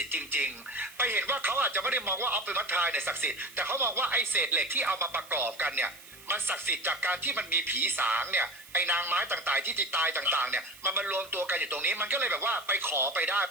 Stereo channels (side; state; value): right; noise; hiss, 20 dB below the sound